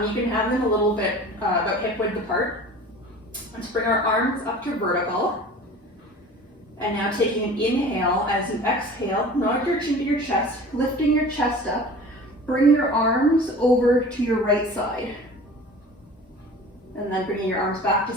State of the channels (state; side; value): normal; both; correlation 0.41